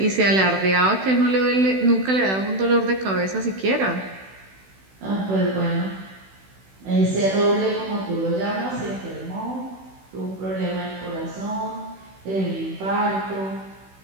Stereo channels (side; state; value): left; late; 16 ms